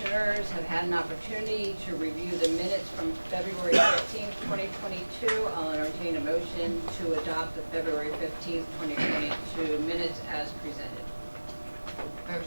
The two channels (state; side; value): inverted; both; correlation -1.00